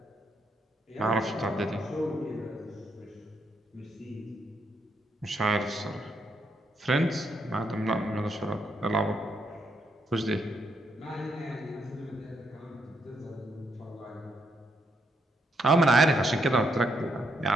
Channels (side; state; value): both; normal; correlation 0.77